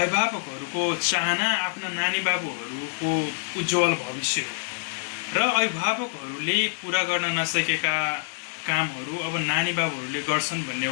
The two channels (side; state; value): right; silent; 61 dB below the other